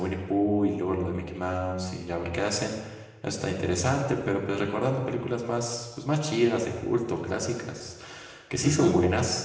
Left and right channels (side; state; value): both; identical; correlation 1.00